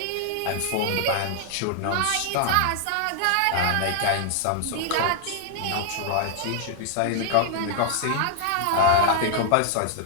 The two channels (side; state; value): both; different; correlation 0.00